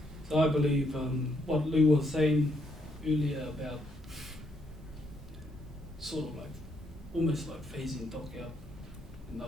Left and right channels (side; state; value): both; normal; correlation 0.74